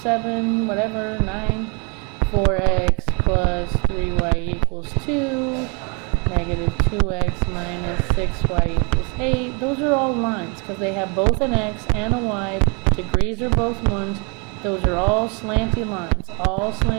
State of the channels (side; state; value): left; quieter; 33.2 dB